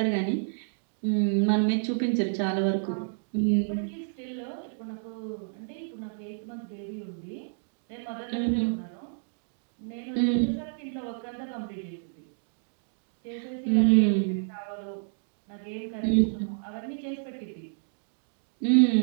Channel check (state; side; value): silent; left; digital silence